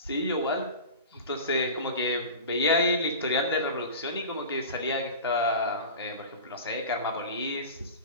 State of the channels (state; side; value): inverted; both; correlation -0.33